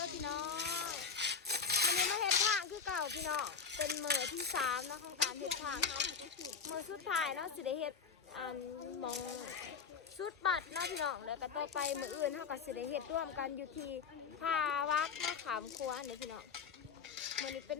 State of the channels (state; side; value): quieter; right; 6.0 dB